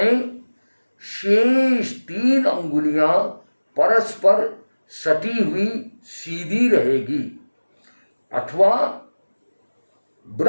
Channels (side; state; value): both; inverted; correlation -1.00